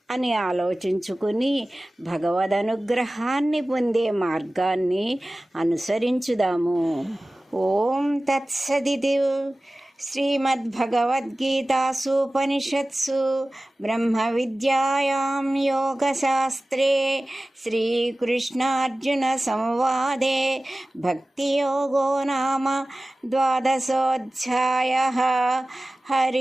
అని ఆలోచించుకుని భగవద్ అనుగ్రహాన్ని పొందే మార్గాన్ని అనుసరించుదాము. ఓం తత్సదితి. శ్రీమద్భగవద్గీతాసూపనిషత్సు బ్రహ్మ విద్యాయాం యోగశాస్త్రే శ్రీకృష్ణార్జున సంవాదే భక్తియోగో నామ ద్వాదశోऽధ్యాయः.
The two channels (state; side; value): normal; both; correlation 0.97